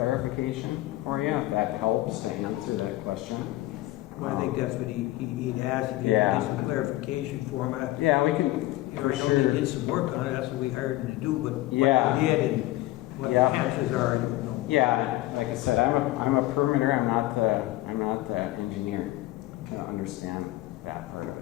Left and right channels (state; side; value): quieter; right; 17.2 dB